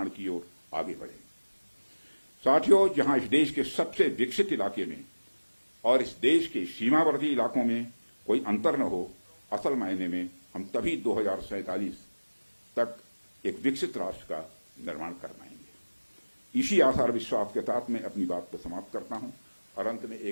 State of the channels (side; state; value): both; inverted; correlation -1.00